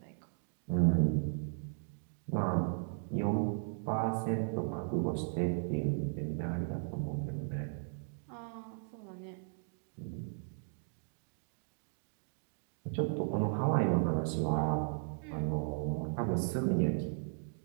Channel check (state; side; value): silent; left; digital silence